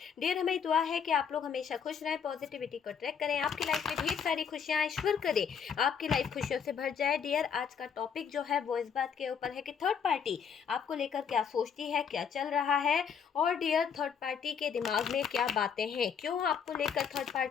डियर, हमें दुआ है कि आप लोग हमेशा खुश रहें, पॉजिटिविटी को ट्रैक करें, आपकी लाइफ में ढेर सारी खुशियां ईश्वर करे, आपकी लाइफ खुशियों से भर जाए। डियर, आज का टॉपिक जो है वो इस बात के ऊपर है कि थर्ड पार्टी आपको लेकर क्या सोचती है, क्या चल रहा है, और डियर थर्ड पार्टी के दिमाग में क्या बातें हैं, क्यों आपको लेकर थर्ड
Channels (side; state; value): right; quieter; 7.1 dB